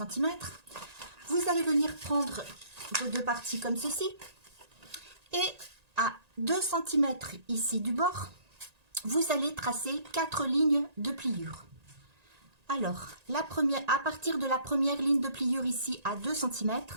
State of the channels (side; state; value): left; late; 1.9 ms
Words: Vous allez venir prendre vos deux parties comme ceci. Et à 2 cm ici du bord, vous allez tracer 4 lignes de pliure. Alors, la première, à partir de la première ligne de pliure ici à 2 cm,